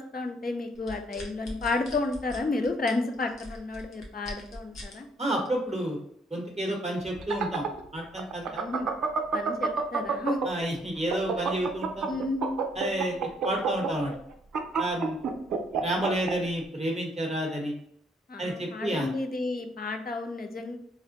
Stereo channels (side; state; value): both; normal; correlation 0.67